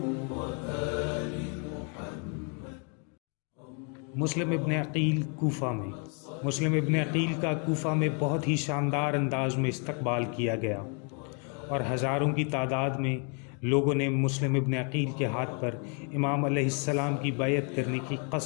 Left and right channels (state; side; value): quieter; right; 38.9 dB